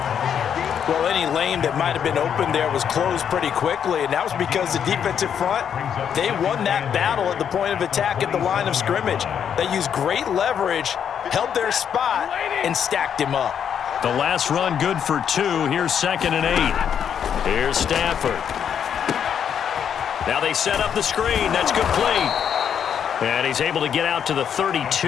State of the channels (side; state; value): right; quieter; 8.3 dB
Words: Well, any lane that might have been open there was closed pretty quickly, and that was because the defensive front, they won that battle at the point of attack at the line of scrimmage. They used great leverage, held their spot, and stacked him up. The last run good for 2. Here's 2nd and 8. Here's Stafford. Now they set up the screen. That's complete. And he's able to get out to the